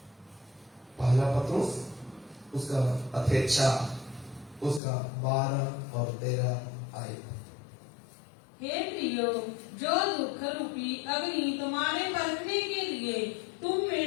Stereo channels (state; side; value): drops out; right; at 4.8 s